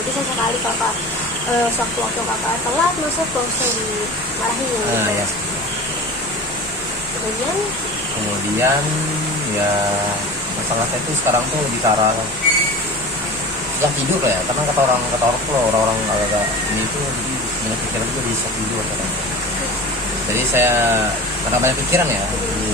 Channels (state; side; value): normal; both; correlation 0.34